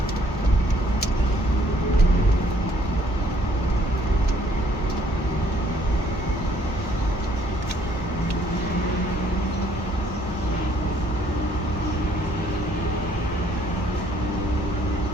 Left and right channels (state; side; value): normal; both; correlation 0.63